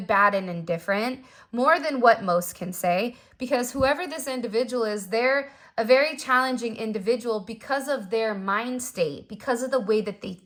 bad, and indifferent, more than what most can say, because whoever this individual is, they're a very challenging individual because of their mind state, because of the way that they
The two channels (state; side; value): identical; both; correlation 1.00